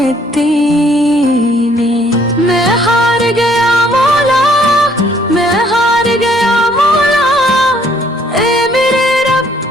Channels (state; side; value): normal; both; correlation 0.64